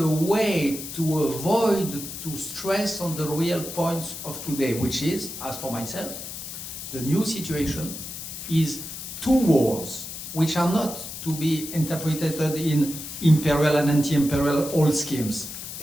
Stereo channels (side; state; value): left; noise; hiss, 9 dB below the sound